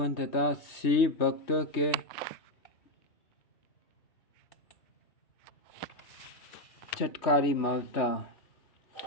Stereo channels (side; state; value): right; late; 3.2 ms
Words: तथा शिव भक्तों के चटकारी ममता।